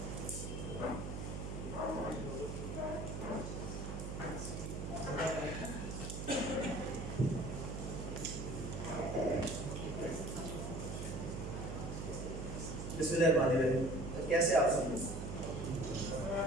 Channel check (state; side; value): noise; right; hum, 5 dB below the sound